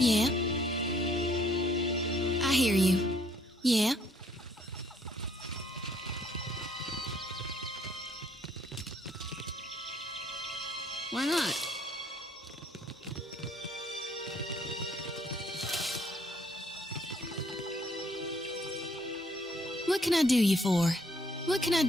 I hear you. Yeah. Why not? What can I do you for? What can I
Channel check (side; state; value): both; normal; correlation 0.65